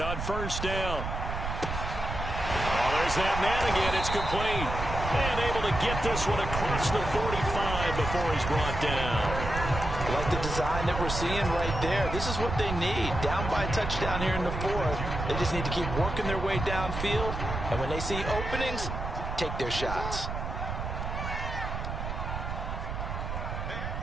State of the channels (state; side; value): noise; right; rumble, 5 dB below the sound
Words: on first down. Oh, there's that man again. It's complete. And able to get this one across the 45 before he's brought down. Like the design that we're seeing right there. This is what they need. Down by a touchdown here in the fourth. They just need to keep working their way downfield. And when they see openings, take their shots.